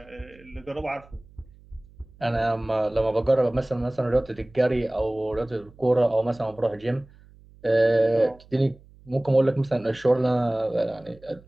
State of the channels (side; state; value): right; noise; hum, 25 dB below the sound